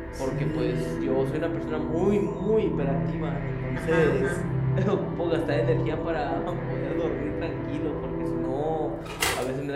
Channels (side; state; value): both; identical; correlation 1.00